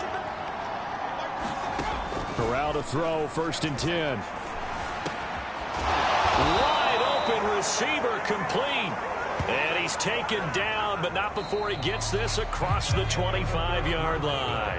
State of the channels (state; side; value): identical; both; correlation 1.00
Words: Corral to throw, 1st and 10. Wide open receiver, complete. And he's taken down, but not before he gets this across the 25-yard